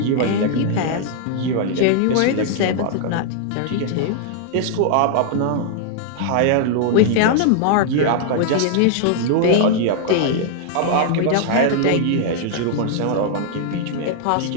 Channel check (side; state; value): both; different; correlation -0.01